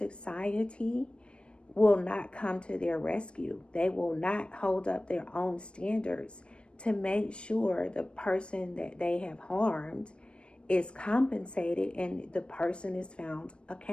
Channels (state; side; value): late; right; 0.057 ms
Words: will not come to their rescue. They will not hold up their own standards to make sure the person that they have harmed is compensated and the person is found